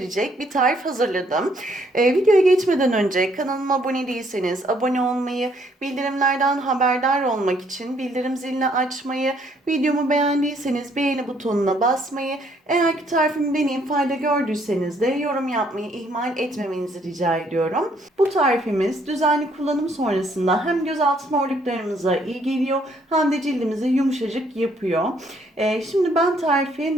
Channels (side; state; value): both; normal; correlation 0.67